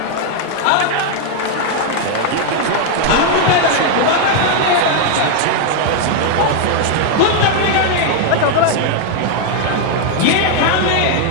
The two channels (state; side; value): different; both; correlation 0.00